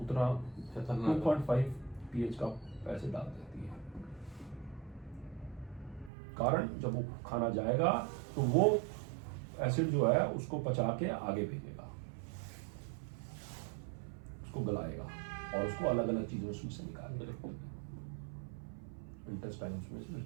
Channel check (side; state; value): left; drops out; at 6.1 s